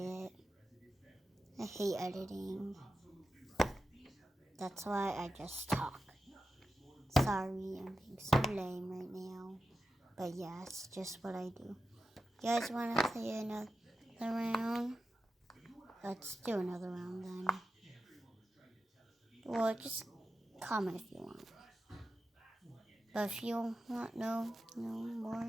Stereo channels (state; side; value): normal; both; correlation 0.91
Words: I hate editing. That's why I just talk. Sorry, I'm being so lame right now. But yeah, it's just what I do. You guys want to play another round? Let's do another round then. Well, just comment if you want. But if you want no